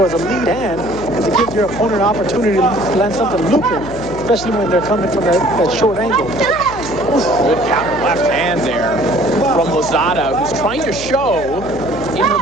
as a lead hand, because it gives your opponent an opportunity to land something looping, especially when they're coming from that short angle. Good counter left hand there from Lozada, who's trying to show in her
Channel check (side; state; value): left; noise; hum, 13 dB below the sound